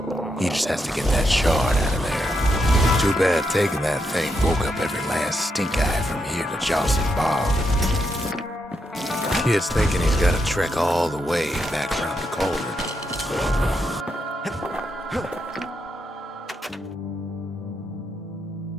he just has to get that shard out of there. Too bad taking that thing woke up every last stink eye from here to Johnson Bog. Kid's thinking he's got to trek all the way back around the cauldron.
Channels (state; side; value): normal; both; correlation 0.82